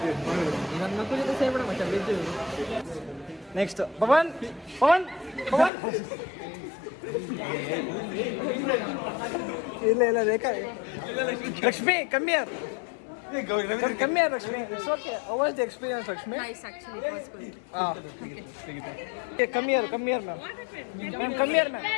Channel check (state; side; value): drops out; right; at 5.7 s